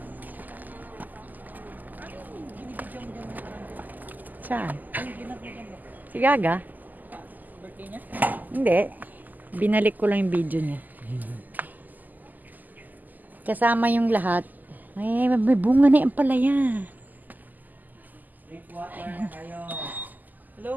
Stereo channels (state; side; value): late; left; 0.084 ms